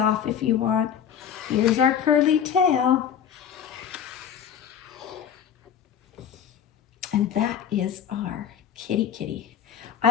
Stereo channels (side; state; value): right; quieter; 8.5 dB